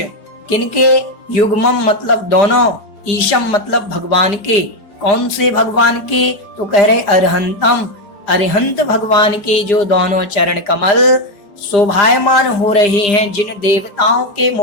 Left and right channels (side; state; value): right; late; 4.9 ms